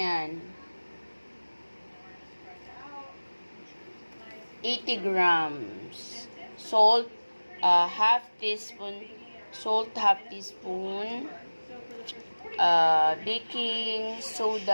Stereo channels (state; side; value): inverted; both; correlation -1.00